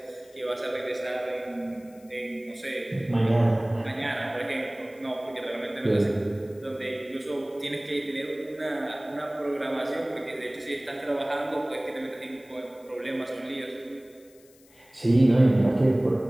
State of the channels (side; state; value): left; noise; hiss, 28 dB below the sound